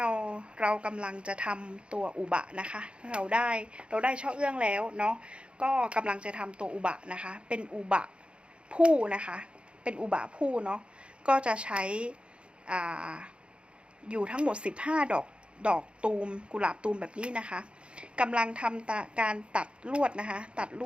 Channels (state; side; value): late; left; 0.057 ms